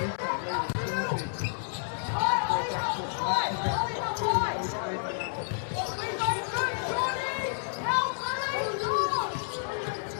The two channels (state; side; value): silent; right; digital silence